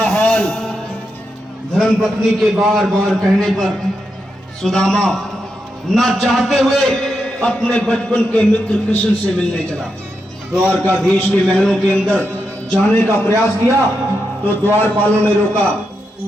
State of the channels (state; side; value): normal; both; correlation 0.85